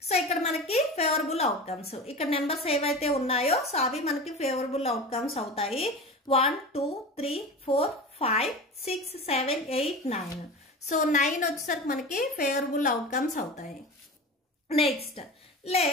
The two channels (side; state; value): both; normal; correlation 0.31